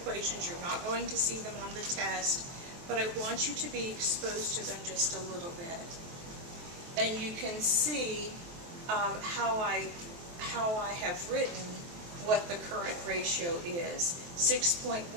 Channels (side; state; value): left; late; 23 ms